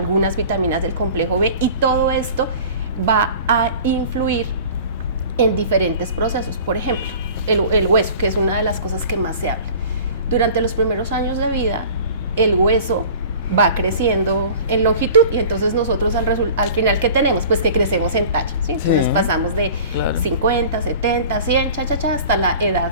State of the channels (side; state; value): both; inverted; correlation -0.43